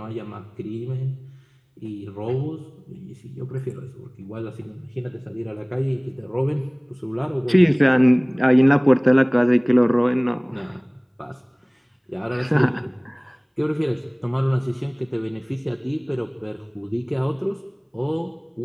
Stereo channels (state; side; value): identical; both; correlation 1.00